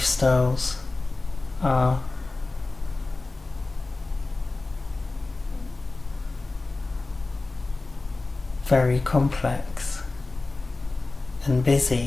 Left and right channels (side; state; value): right; quieter; 3.4 dB